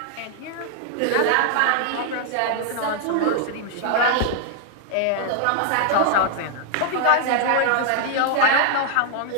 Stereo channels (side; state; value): both; different; correlation 0.00